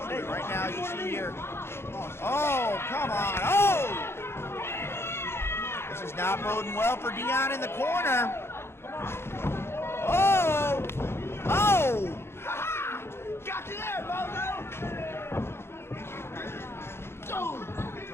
Right now, as you see here. Oh, come on. Oh! This is not boding well for Dion in the corner. Oh! Oh! Got you there, Bozo!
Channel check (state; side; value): late; right; 0.12 ms